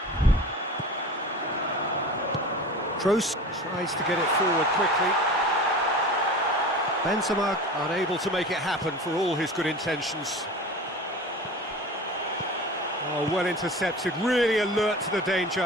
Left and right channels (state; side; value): normal; both; correlation 0.35